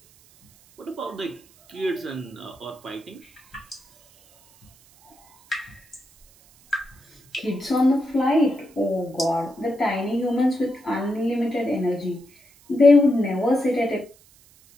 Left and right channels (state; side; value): noise; right; hiss, 28 dB below the sound